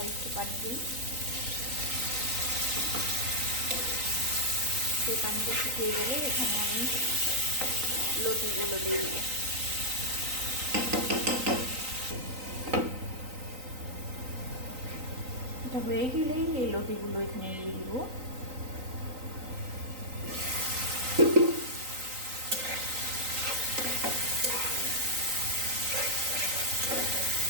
একটু পানি দিই। সেই পানিটা শুকিয়ে গেলে এখানে আমি লতিগুলো দিয়ে দিব। এটা হয়ে গেলেই এই লতিগুলো এখানে দিয়ে দিব।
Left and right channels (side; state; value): left; late; 3.9 ms